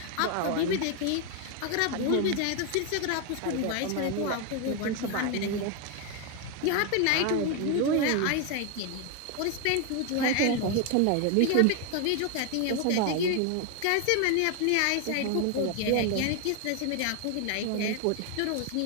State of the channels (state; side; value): different; both; correlation 0.01